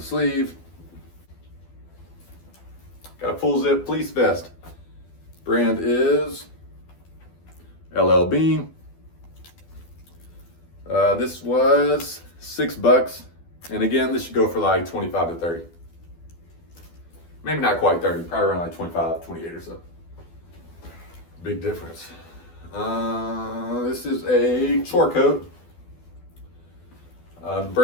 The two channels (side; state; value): right; late; 12 ms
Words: sleeve. Got a full zip fleece vest. Brand is LL Bean. This was $6, and again, this should go for like 25 to 30. Maybe not quite 30, probably around like 25, 28 or so. Big difference. This is a chore coat. The